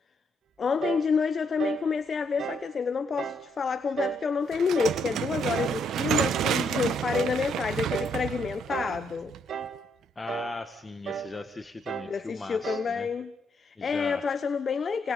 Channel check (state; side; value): normal; both; correlation 0.74